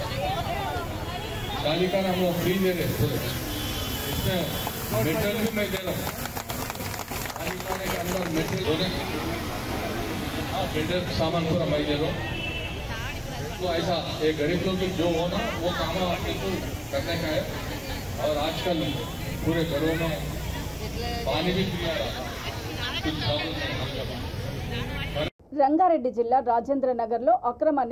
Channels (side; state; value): both; identical; correlation 1.00